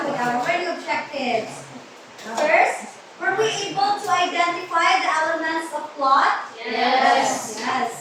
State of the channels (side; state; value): both; identical; correlation 1.00